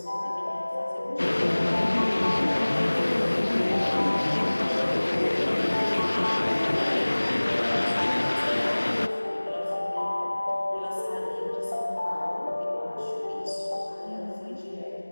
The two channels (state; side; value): inverted; both; correlation -1.00